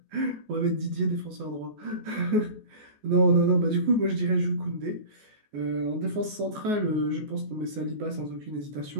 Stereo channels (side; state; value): left; late; 14 ms